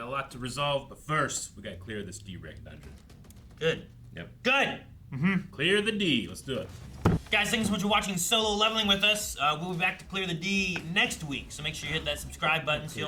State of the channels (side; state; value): both; identical; correlation 1.00